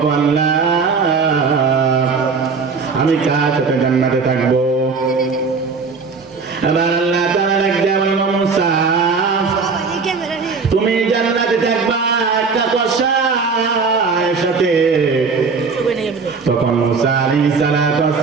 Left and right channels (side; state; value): left; quieter; 4.9 dB